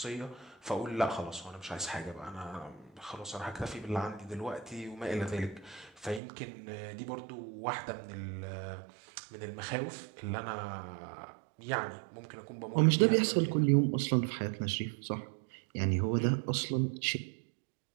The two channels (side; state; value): left; drops out; at 6.2 s